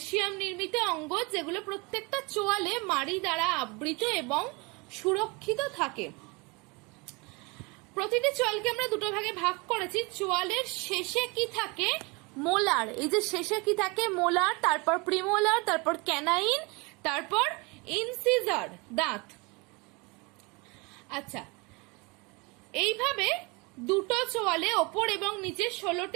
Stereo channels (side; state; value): left; quieter; 27.7 dB